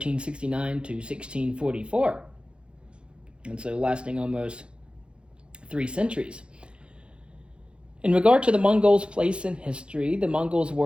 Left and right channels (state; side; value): late; left; 0.056 ms